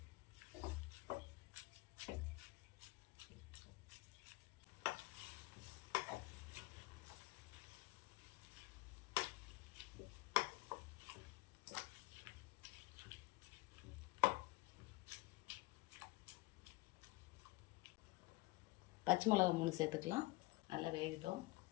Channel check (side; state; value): right; quieter; 22.7 dB